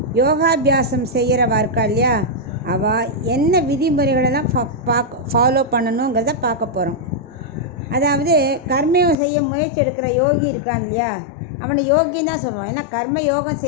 யோகாபியாசம் செய்கிறவா இருக்கா இல்லையா, அவள் என்ன விதிமுறைகளெல்லாம் ஃபாலோ பண்ணணுங்கிறத பார்க்க போகிறோம். அதாவது கர்மயோகம் செய்ய முயற்சி எடுக்கிற யோகி இருக்கான் இல்லையா, அவனை யோகின்னு தான் சொல்லுவான். ஏன்னா கர்ம யோகம்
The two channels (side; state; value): right; drops out; at 9.2 s